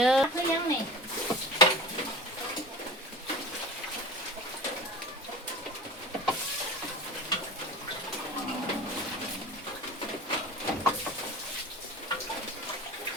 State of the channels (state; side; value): normal; both; correlation 0.34